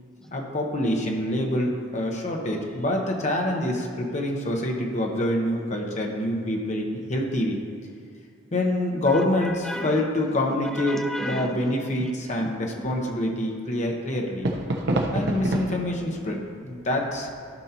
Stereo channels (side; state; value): both; normal; correlation 0.55